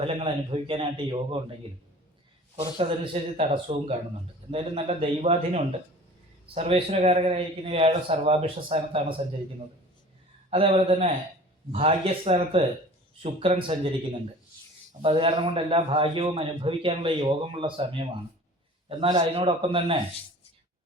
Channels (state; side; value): normal; both; correlation 0.44